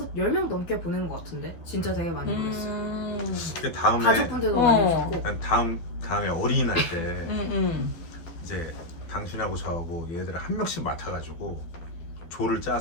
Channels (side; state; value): right; late; 12 ms